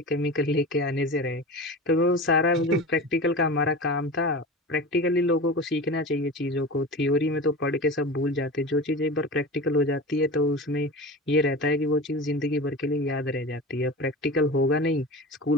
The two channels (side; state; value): both; normal; correlation 0.31